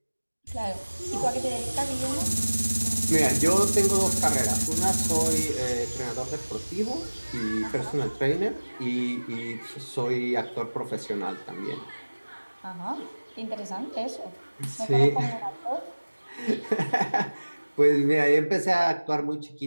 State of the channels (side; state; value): both; inverted; correlation -1.00